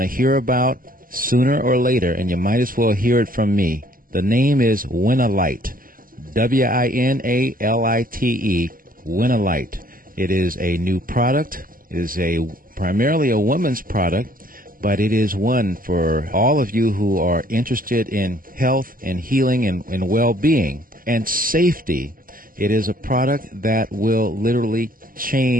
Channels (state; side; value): late; left; 0.41 ms